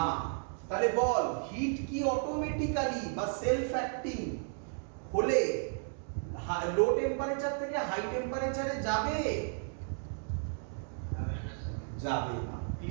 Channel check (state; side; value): silent; left; 55 dB below the other